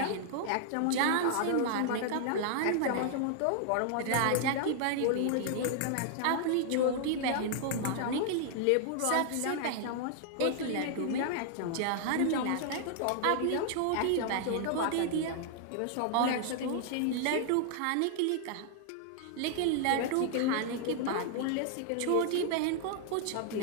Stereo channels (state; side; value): different; both; correlation -0.01